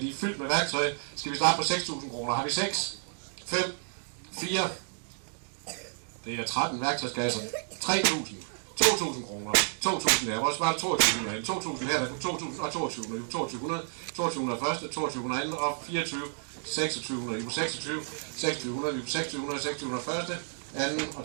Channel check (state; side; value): silent; left; digital silence